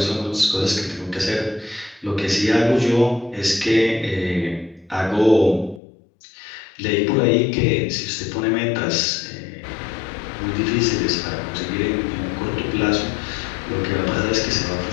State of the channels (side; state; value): right; drops out; at 5.8 s